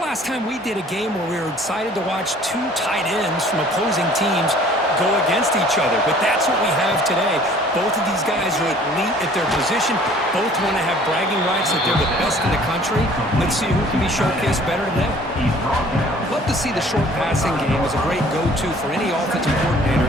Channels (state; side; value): normal; both; correlation 0.53